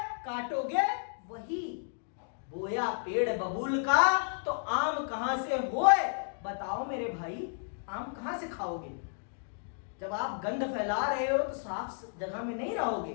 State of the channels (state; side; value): silent; right; digital silence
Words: काटोगे वही। बोया पेड़ बबूल का तो आम कहां से होए? बताओ मेरे भाई, आम कहां से खाओगे? जब आप गंध फैला रहे हो तो साफ जगह में नहीं